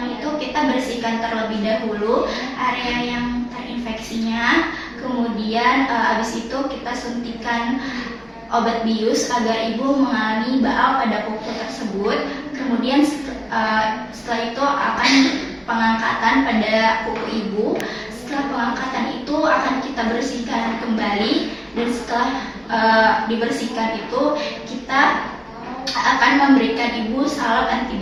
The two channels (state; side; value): identical; both; correlation 1.00